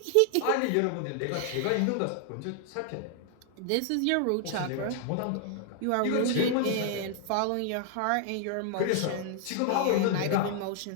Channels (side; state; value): both; different; correlation 0.00